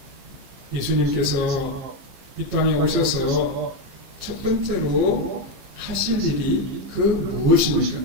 예수님께서 이 땅에 오셔서 첫 번째로 하실 일이 그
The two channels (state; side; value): late; left; 15 ms